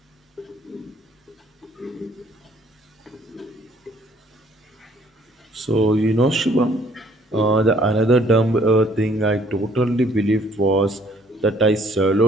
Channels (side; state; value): both; normal; correlation 0.62